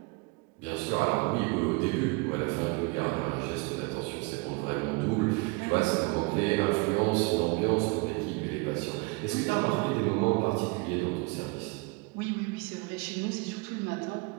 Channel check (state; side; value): quieter; left; 27.7 dB